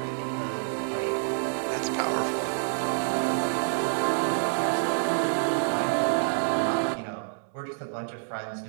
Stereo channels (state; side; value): silent; left; 60 dB below the other